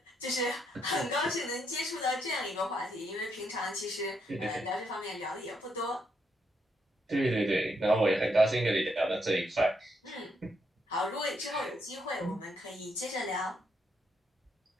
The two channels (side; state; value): both; normal; correlation 0.77